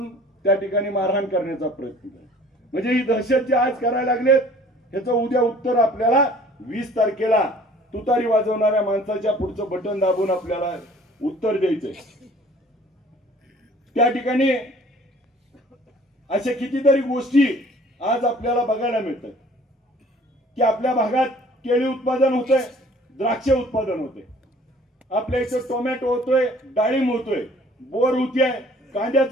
त्या ठिकाणी मारहाण करण्याचा प्रयत्न केला. म्हणजे ही दहशत जी आज करायला लागलेत ह्याचं उद्या उत्तर आपल्याला 20 तारखेला तुतारी वाजवणाऱ्या माणसाच्या पुढचं बटन दाबून आपल्याला उत्तर द्यायचंय. त्या ठिकाणी अशा कितीतरी गोष्टी आज आपल्याला बघायला मिळतात की आपल्या भागात केळी उत्पादन होतंय, द्राक्ष उत्पादन होते, आपल्या इथे टोमॅटो होतोय, डाळिंब होतोय, बोर होतीये,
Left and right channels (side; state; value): both; normal; correlation 0.52